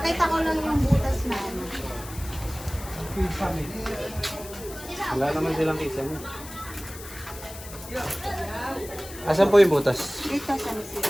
ko lang yung butas na ano. Wala naman silang kisa niya. Asan po yung butas? Dito sa may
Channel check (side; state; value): left; noise; hiss, 14 dB below the sound